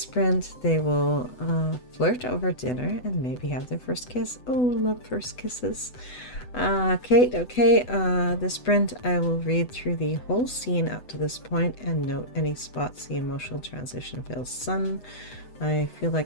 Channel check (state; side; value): late; right; 8.0 ms